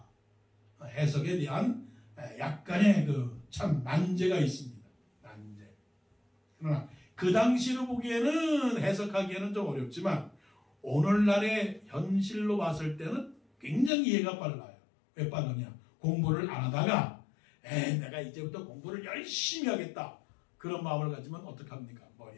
해석에 대한 약간의 참 난제가 있습니다. 난제. 그러나 그 당시로 보기에는 해석하기에는 좀 어렵지만 오늘날의 현실로 봤을 때는 굉장히 이해가 빨라요. 왜 빠르냐? 공부를 안 하다가 내가 이제부터 공부를 열심히 하겠다. 그런 마음을 가지면 어떡합니까?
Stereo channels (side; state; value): right; drops out; at 13.9 s